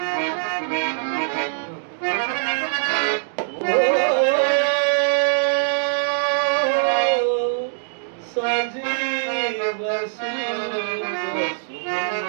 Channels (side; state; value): left; silent; digital silence